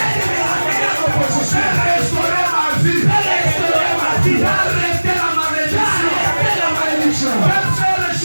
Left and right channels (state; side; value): inverted; both; correlation -1.00